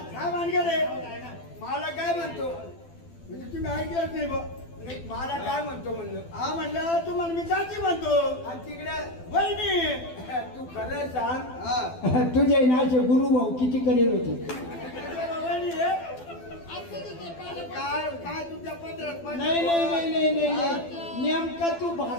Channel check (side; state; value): right; late; 12 ms